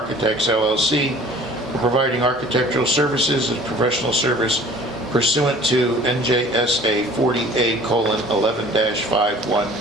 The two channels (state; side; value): normal; both; correlation 0.48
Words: LLC for providing architectural services and professional service pursuant to NJSA